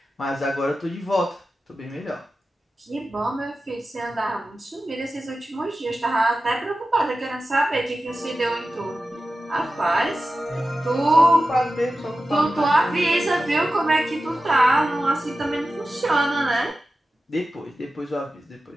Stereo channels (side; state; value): both; normal; correlation 0.93